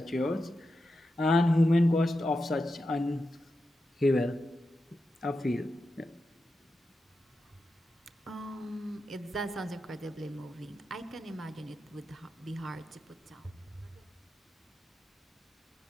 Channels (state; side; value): normal; both; correlation 0.89